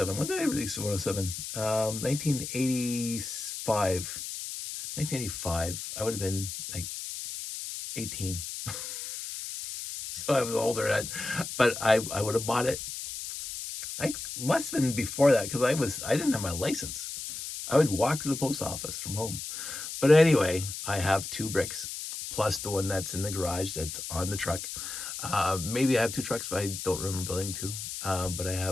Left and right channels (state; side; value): noise; left; hiss, 7 dB below the sound